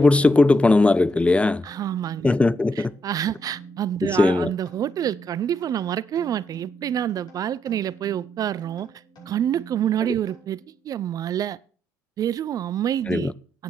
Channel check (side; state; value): both; normal; correlation 0.78